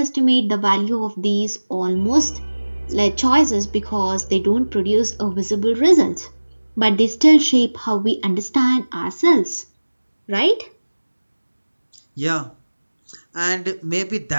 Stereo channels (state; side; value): inverted; both; correlation -1.00